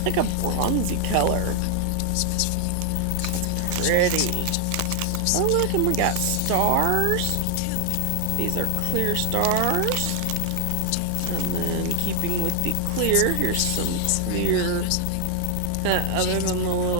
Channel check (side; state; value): both; different; correlation 0.00